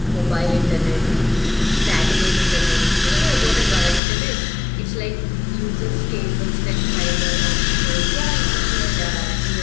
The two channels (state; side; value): drops out; right; at 4.0 s